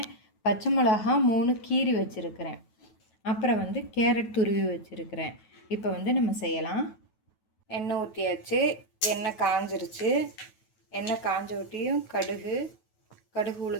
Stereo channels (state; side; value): late; right; 9.2 ms